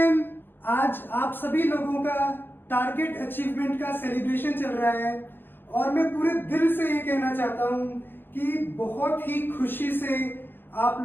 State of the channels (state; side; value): late; right; 0.10 ms